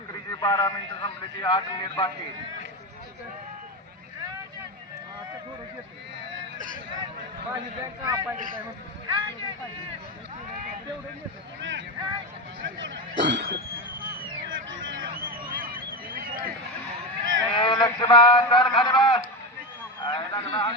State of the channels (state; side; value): normal; both; correlation 0.16